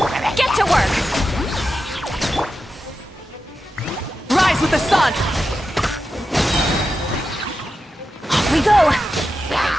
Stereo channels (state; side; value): normal; both; correlation 0.90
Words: Get to work! Rise with the sun! Off we go!